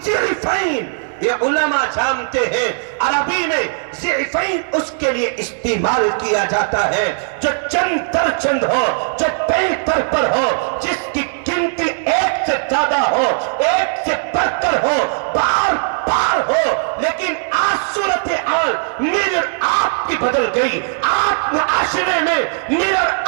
ضعفین۔ یہ علماء جانتے ہیں عربی میں ضعفین اس کے لیے استعمال کیا جاتا ہے جو چند در چند ہو، جو بہتر پر ہو، جس کی گنتی ایک سے زیادہ ہو، ایک سے بڑھ کر ہو، بار بار ہو۔ لیکن آج صورتحال میرے آپ کی بدل گئی، آپ معاشرے میں میرا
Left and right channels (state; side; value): silent; left; 57 dB below the other